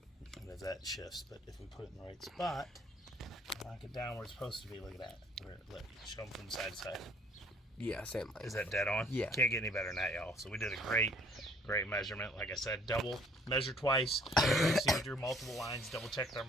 And as that shifts, but if we put it in the right spot, knock it down where it's supposed to be. Look at that. Show them from side to side. Yeah, same length. Is that dead on? Yeah. Can't get any better than that, y'all. So we did a great measurement. Like I said, double, measure twice. See, we drew multiple lines, double checked our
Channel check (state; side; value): normal; both; correlation 0.58